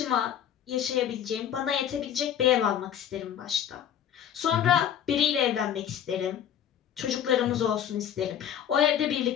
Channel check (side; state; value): right; quieter; 9.6 dB